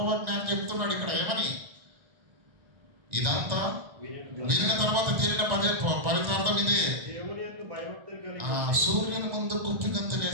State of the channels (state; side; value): late; left; 1.9 ms